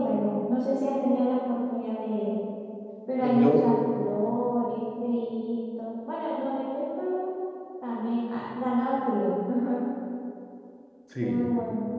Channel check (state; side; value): identical; both; correlation 1.00